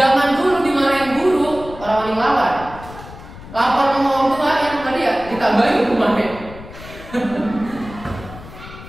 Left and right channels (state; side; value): noise; left; rumble, 15 dB below the sound